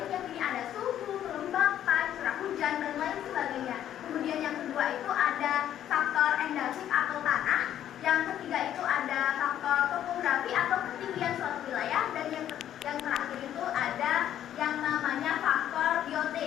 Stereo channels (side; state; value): right; quieter; 11.0 dB